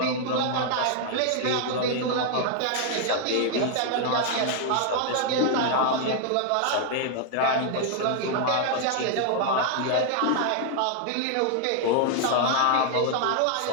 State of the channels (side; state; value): both; different; correlation 0.00